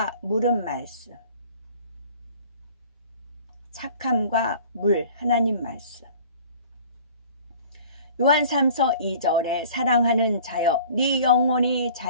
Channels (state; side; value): inverted; both; correlation -0.47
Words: 물은 말씀. 착함과 물, 하나님 말씀. 요한 3서 2절에 사랑하는 자여 네 영혼이